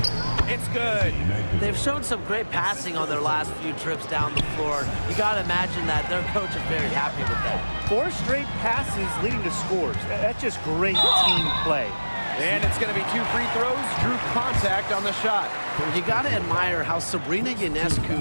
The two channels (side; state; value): both; inverted; correlation -1.00